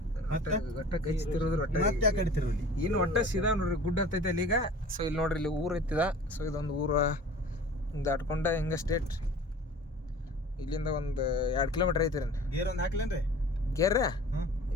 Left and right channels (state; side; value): normal; both; correlation 0.43